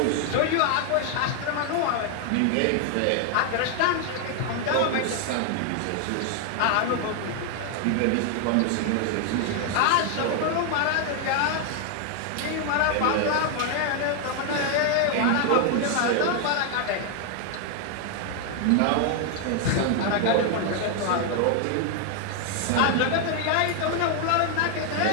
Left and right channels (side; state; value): both; different; correlation 0.00